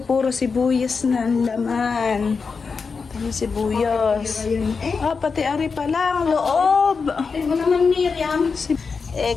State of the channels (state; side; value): quieter; right; 5.0 dB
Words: sibuyas na ang laman. Itong sibuyas. Ah, pati ari pa lang, loob. Ay mo naman, Miriam.